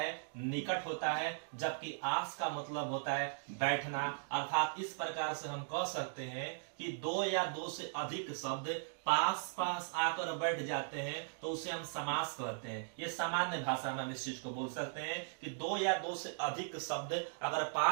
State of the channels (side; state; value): left; silent; digital silence